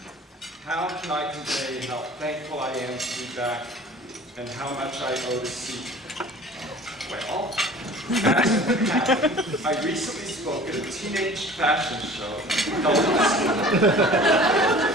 How can I convey how thankful I am to be back and how much I owe to Seton? Well, as it happened, I recently spoke at a teenage fashion show held in Seton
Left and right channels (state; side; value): normal; both; correlation 0.44